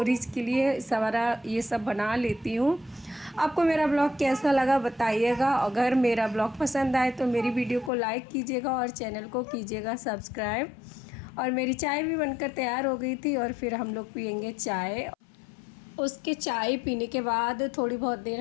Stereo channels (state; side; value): drops out; right; at 7.9 s